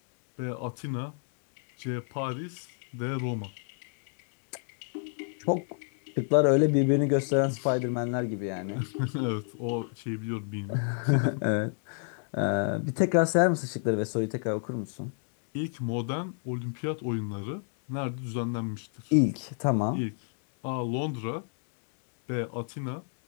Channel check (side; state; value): right; silent; 57 dB below the other